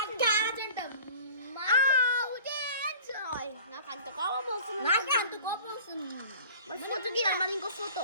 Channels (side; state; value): both; inverted; correlation -0.44